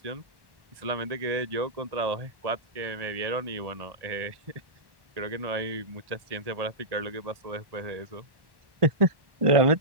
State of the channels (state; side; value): late; left; 1.1 ms